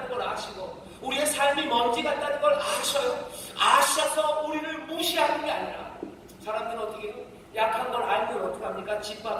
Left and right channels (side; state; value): both; identical; correlation 1.00